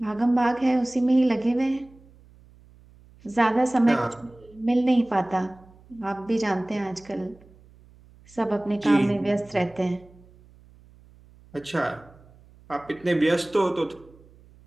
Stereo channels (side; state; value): right; noise; hum, 26 dB below the sound